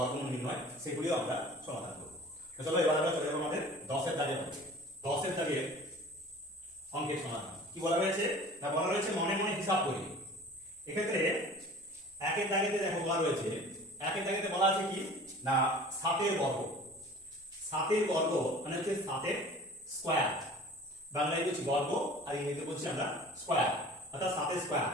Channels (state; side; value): normal; both; correlation 0.44